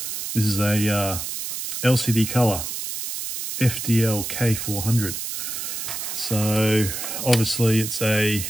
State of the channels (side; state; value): right; noise; hiss, 5 dB below the sound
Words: This is a LCD color, FDL-K400. So obviously it's a